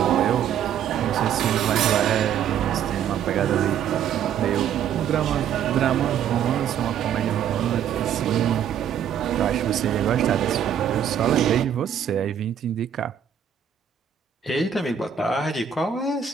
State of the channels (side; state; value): left; quieter; 8.8 dB